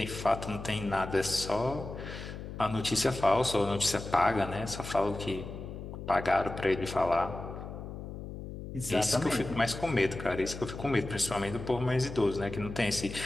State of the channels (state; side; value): noise; left; hum, 9 dB below the sound